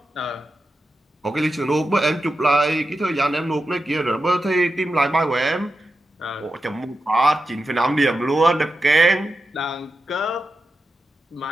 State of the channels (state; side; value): normal; both; correlation 0.90